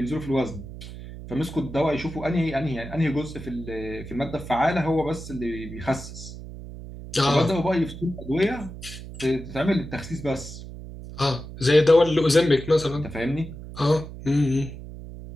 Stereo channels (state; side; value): noise; right; hum, 12 dB below the sound